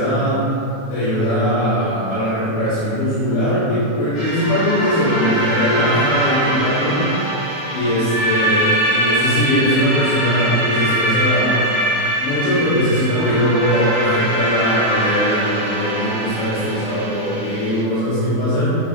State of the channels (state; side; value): late; right; 35 ms